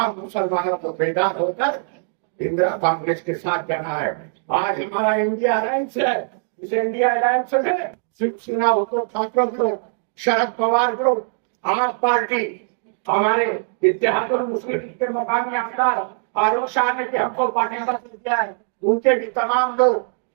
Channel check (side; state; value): left; silent; digital silence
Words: मुसलमानों को बेदार होकर इंदिरा कांग्रेस के साथ जाना है। आज हमारा इंडिया अलायंस है, इस इंडिया अलायंस में शिवसेना, उद्धव ठाकरे ग्रुप, शरद पवार ग्रुप, आप पार्टी, हमारे इत्तेहादुल मुस्लिम के मकामी आमदार फारूक शाह ने भी हमको पार्टी पर दिया है, उनके भी तमाम लोग